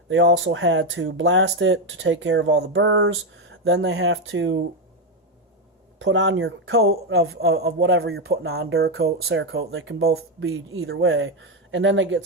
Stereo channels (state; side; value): normal; both; correlation 0.07